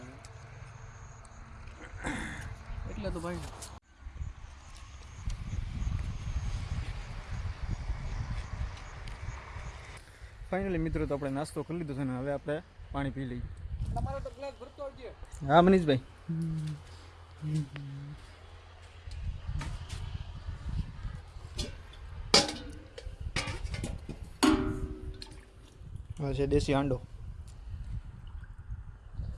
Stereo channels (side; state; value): both; identical; correlation 1.00